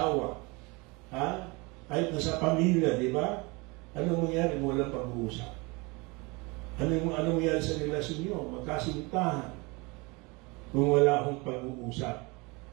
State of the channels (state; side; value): quieter; left; 26.9 dB